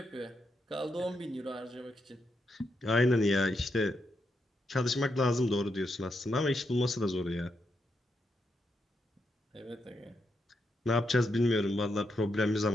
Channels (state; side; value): normal; both; correlation 0.82